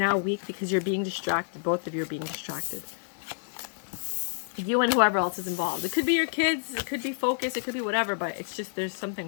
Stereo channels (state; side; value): silent; right; digital silence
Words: weak because you're being distracted. Both of you are being distracted. You and whoever else is involved. It could be your kids. It could be focus. It could be whatever. But it's just, there's